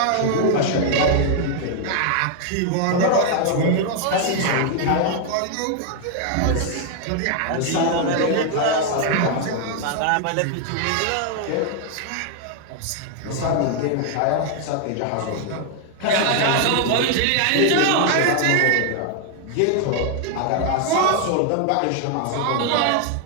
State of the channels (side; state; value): both; different; correlation 0.00